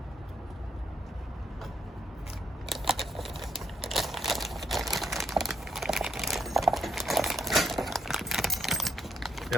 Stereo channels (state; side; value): normal; both; correlation 0.76